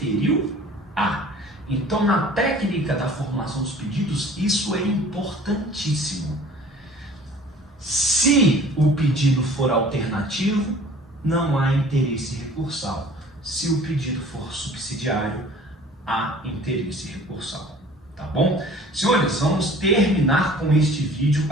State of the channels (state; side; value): normal; both; correlation 0.49